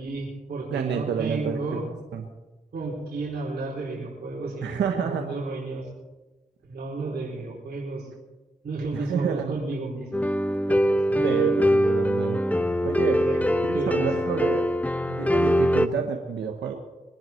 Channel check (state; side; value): normal; both; correlation 0.82